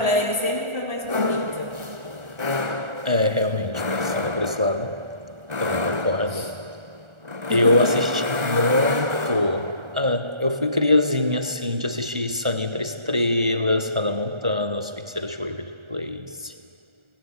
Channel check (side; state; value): left; late; 1.4 ms